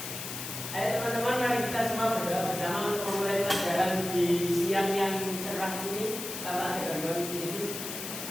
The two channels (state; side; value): noise; left; hiss, 7 dB below the sound